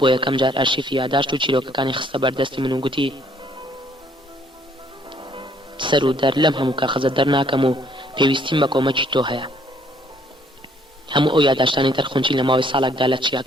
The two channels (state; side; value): normal; both; correlation 0.64